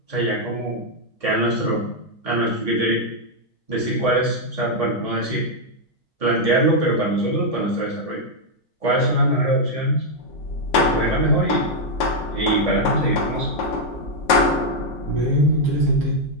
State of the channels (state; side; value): normal; both; correlation -0.01